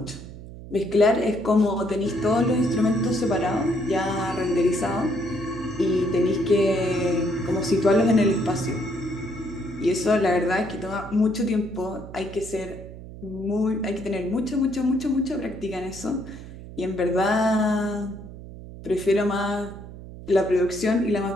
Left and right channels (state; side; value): noise; right; hum, 14 dB below the sound